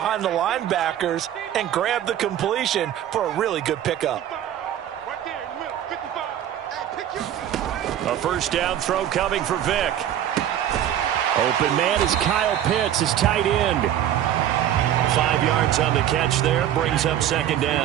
the linebackers and grab the completion for a really good pickup. A 1st down throw coming for Vick. Open man is Kyle Pitts, his tight end. 5 yards on the catch there, brings up 2nd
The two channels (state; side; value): quieter; left; 11.1 dB